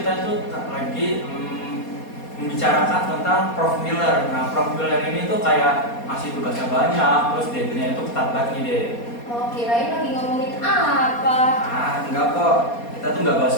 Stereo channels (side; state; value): right; late; 4.2 ms